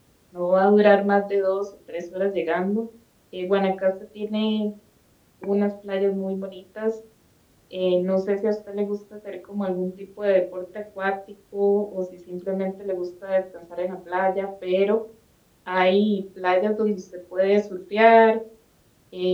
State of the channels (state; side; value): identical; both; correlation 1.00